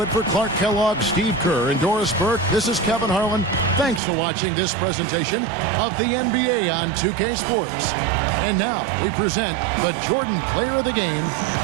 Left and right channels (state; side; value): drops out; left; at 4.0 s